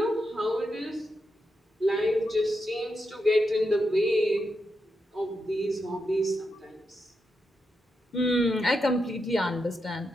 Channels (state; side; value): normal; both; correlation 0.85